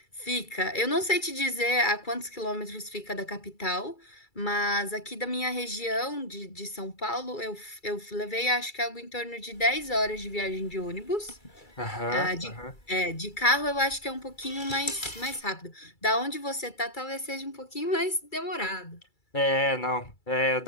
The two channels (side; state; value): right; late; 2.3 ms